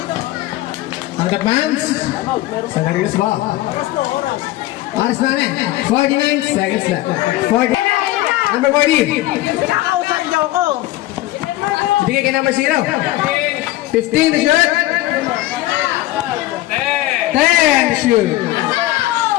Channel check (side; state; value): right; quieter; 16.8 dB